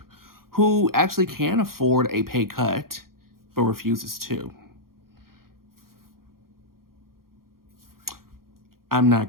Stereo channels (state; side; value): late; left; 0.92 ms